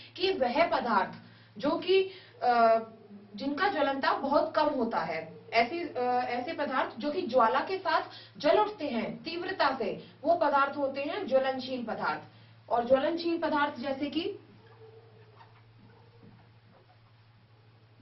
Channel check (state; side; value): identical; both; correlation 1.00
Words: कि वह पदार्थ जो कि जिनका ज्वलन ताप बहुत कम होता है, ऐसे पदार्थ जो कि ज्वाला के साथ जल उठते हैं तीव्रता से, वो पदार्थ होते हैं ज्वलनशील पदार्थ। और ज्वलनशील पदार्थ जैसे कि